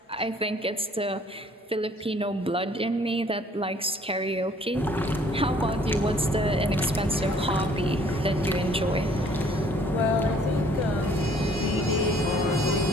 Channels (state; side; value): normal; both; correlation 0.58